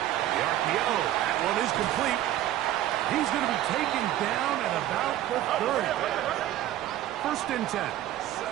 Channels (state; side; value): quieter; left; 13.2 dB